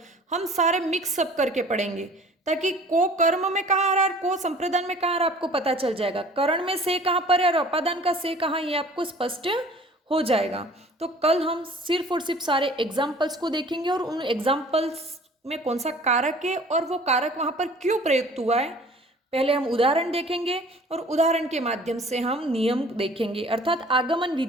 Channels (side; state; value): both; normal; correlation 0.49